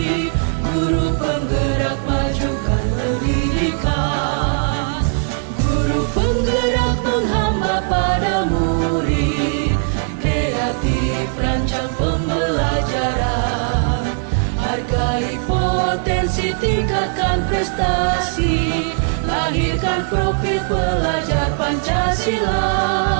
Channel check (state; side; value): silent; left; digital silence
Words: guru penggerak majukan pendidikan. Guru penggerak menghamba pada murid, kreatif rancang pembelajaran. Hargai potensi, tingkatkan prestasi, lahirkan profil pelajar Pancasila.